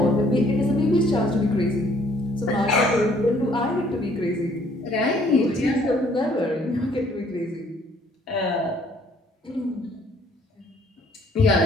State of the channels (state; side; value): normal; both; correlation 0.61